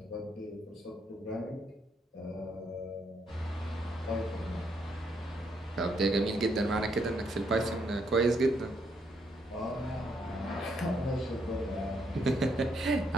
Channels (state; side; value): normal; both; correlation 0.74